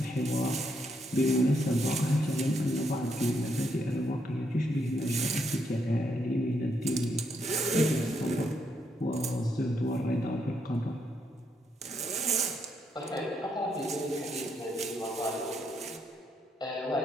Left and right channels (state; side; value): normal; both; correlation 0.76